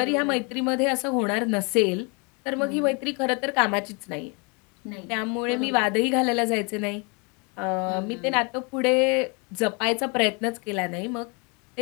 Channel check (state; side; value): quieter; right; 32.5 dB